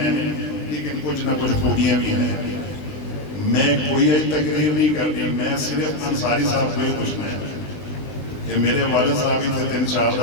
लेकिन कुछ ना कुछ खूबियां भी हैं। मैं कोई तकरीर नहीं करनी, मैं सिर्फ अंसारी साहब को ही पूछना है कि मेरे वाले साहब इतने 3-4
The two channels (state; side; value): late; right; 20 ms